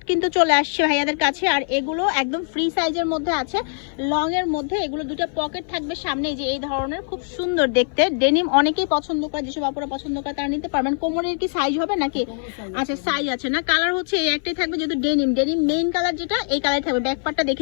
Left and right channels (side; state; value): right; silent; 58 dB below the other